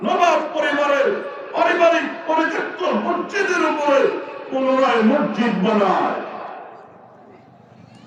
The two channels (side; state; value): both; identical; correlation 1.00